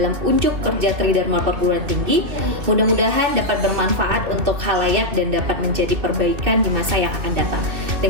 unjuk kerja Tridharma Perguruan Tinggi. Mudah-mudahan dapat bermanfaat untuk khalayak dan dapat menjadi perbaikan di masa yang akan datang.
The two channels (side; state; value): left; late; 2.6 ms